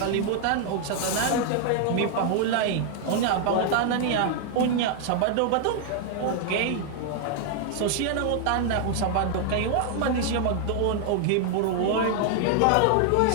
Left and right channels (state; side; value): different; both; correlation 0.00